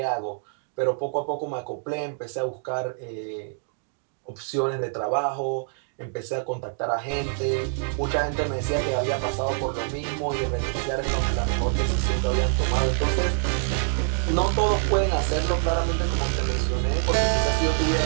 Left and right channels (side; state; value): left; silent; 61 dB below the other